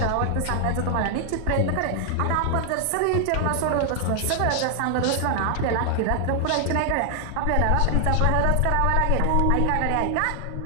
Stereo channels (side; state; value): both; different; correlation 0.00